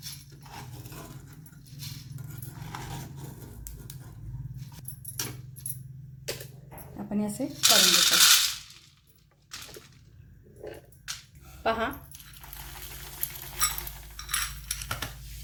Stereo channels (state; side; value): identical; both; correlation 1.00